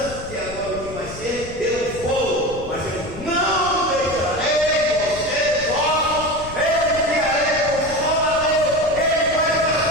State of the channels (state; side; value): noise; left; rumble, 14 dB below the sound